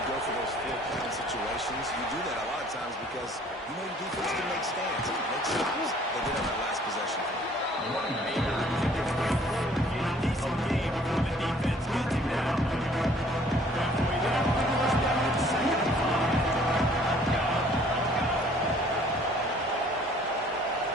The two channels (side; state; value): both; normal; correlation 0.56